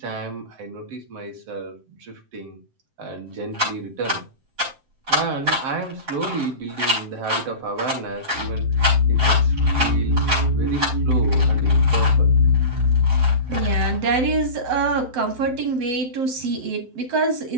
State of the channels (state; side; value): late; left; 7.7 ms